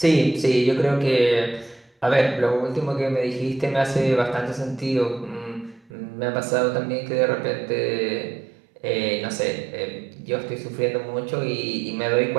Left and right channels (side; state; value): left; drops out; at 5.9 s